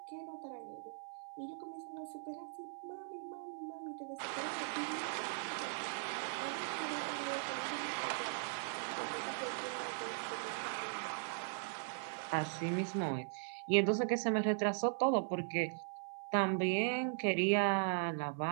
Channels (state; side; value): silent; left; 52 dB below the other